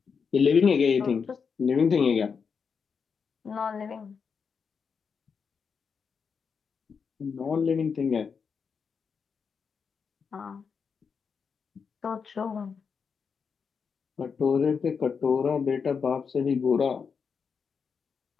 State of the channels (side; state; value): right; quieter; 5.9 dB